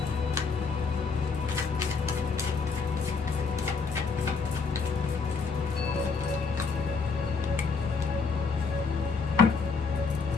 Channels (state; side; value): quieter; right; 4.9 dB